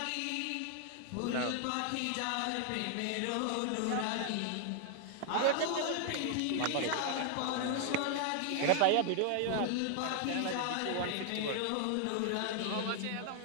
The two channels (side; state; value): both; different; correlation 0.00